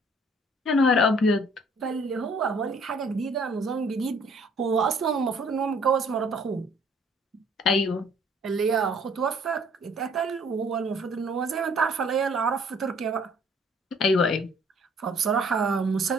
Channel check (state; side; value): normal; both; correlation 0.58